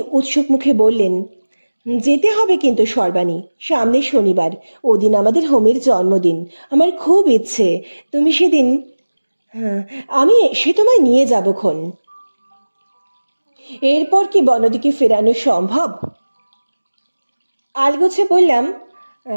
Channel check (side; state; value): both; inverted; correlation -1.00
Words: উৎসুক মুখে বললেন, যেতে হবে কিন্তু সর্বাণী, সামনে শনিবার, ওদিন আমাদের হোমের জন্মদিন। আমার খুব ইচ্ছে তুমি সেদিন। হ্যাঁ, আমি এসে তোমায় নিয়ে যাবক্ষণ। এরপর কি বনদীকে ফেরানো সম্ভব? আলগোছে বললাম,